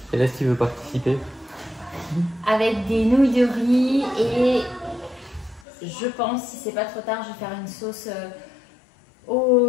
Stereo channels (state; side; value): drops out; right; at 5.7 s